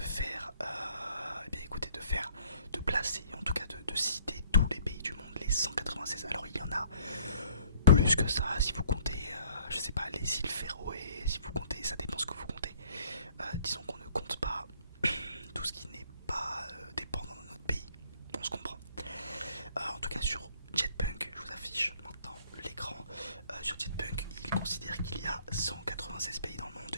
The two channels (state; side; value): inverted; both; correlation -0.59